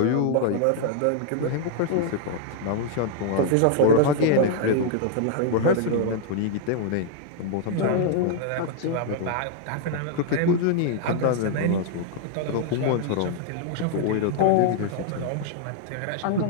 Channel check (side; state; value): both; different; correlation -0.01